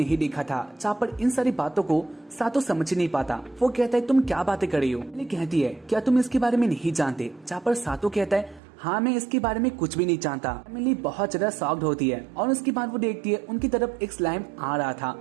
देखा था। जहाँ पर इन सारी बातों को सातो समझ नहीं पाता। वो कहता है तुम क्या बातें कर रही हो। एमिली कहती है क्या तुम इसके बारे में नहीं जानते। जहाँ पर सातो कहता है हाँ मैं इसके बारे में कुछ भी नहीं जानता। एमिली बहुत ज्यादा शॉक्ड होती है और उसके बाद वो देखती है उनकी तरफ एक स्लाइम आ रहा था।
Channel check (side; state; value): left; drops out; at 8.6 s